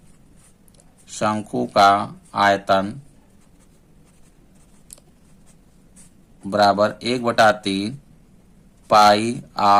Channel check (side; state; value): both; identical; correlation 1.00